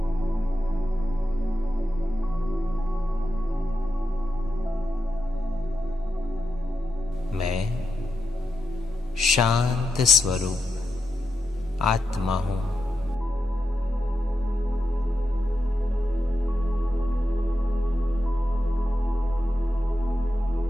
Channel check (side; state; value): right; noise; hum, 29 dB below the sound